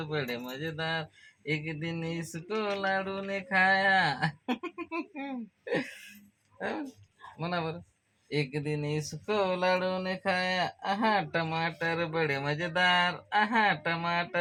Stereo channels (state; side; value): identical; both; correlation 1.00